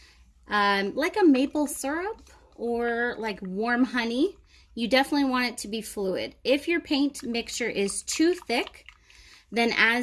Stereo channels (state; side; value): identical; both; correlation 1.00